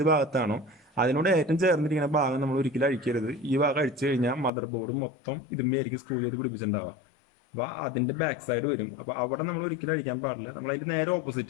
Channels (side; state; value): right; drops out; at 4.5 s